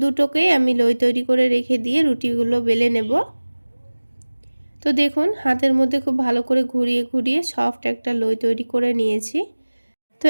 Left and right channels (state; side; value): inverted; both; correlation -1.00